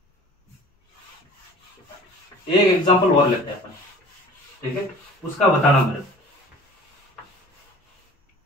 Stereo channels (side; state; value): both; normal; correlation 0.45